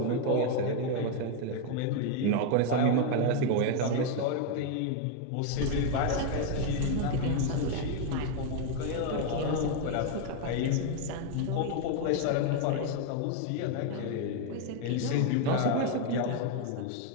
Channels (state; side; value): different; both; correlation 0.01